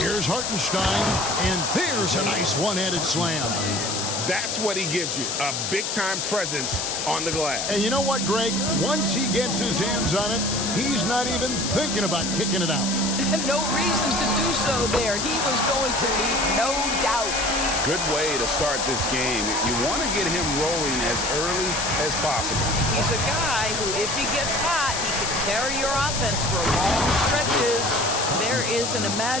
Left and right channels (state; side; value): noise; left; hiss, 2 dB below the sound